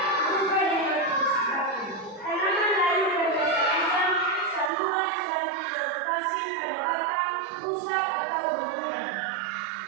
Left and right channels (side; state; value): left; drops out; at 4.7 s